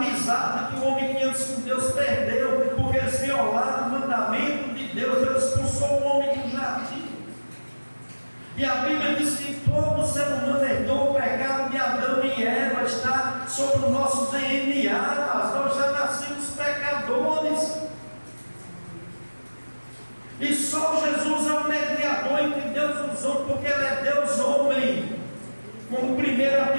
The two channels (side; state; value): both; inverted; correlation -1.00